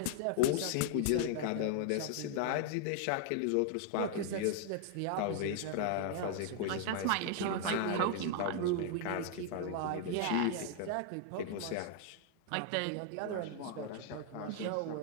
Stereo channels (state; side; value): different; both; correlation 0.00